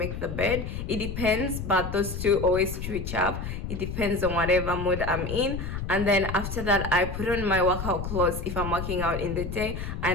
the bed. It depends, but those two always switch up. It depends on whatever mood I'm in. And then after that, I put on my workout clothes if I'm working out in the day,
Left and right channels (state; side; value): noise; left; rumble, 5 dB below the sound